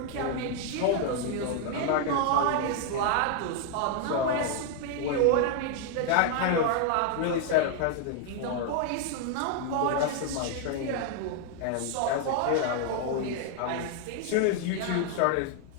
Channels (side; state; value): both; different; correlation 0.00